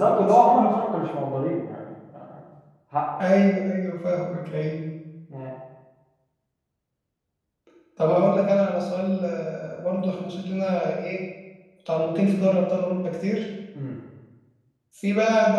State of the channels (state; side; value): identical; both; correlation 1.00